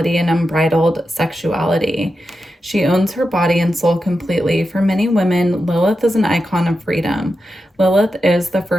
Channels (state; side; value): normal; both; correlation 0.89